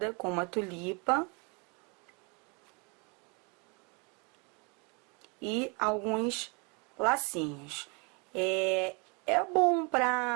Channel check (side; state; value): left; quieter; 32.1 dB